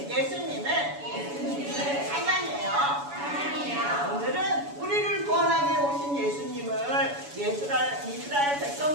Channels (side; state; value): left; late; 7.0 ms